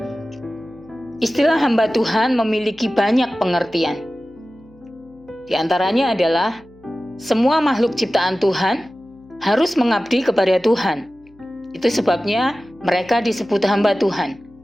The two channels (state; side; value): noise; left; hum, 28 dB below the sound